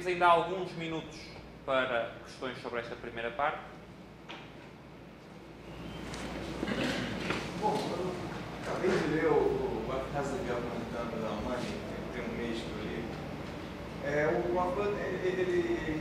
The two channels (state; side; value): identical; both; correlation 1.00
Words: ainda alguns minutos para questões sobre esta primeira parte. Bom, eu acabei de ler o What Has the Government Done with Our Money, tem um mês que eu li. O Hoffman,